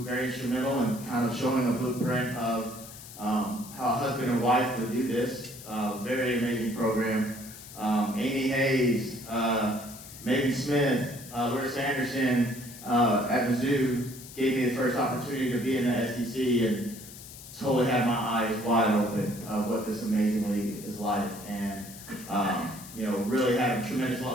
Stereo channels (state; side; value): noise; left; hiss, 15 dB below the sound